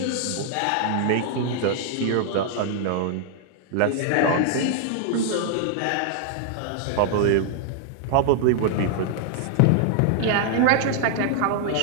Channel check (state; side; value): different; both; correlation 0.00